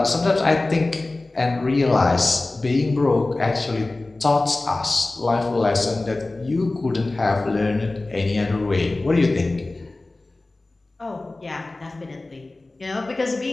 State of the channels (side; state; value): right; quieter; 3.0 dB